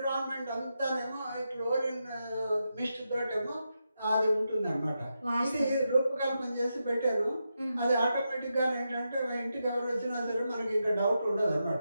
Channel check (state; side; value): inverted; both; correlation -0.86